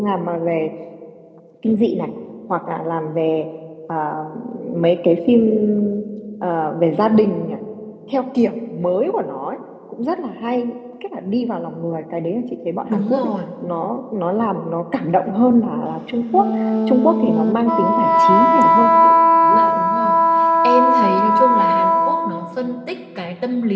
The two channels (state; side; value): identical; both; correlation 1.00